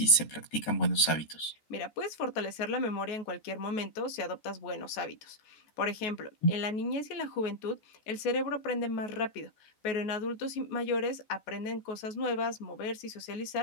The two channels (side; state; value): right; late; 14 ms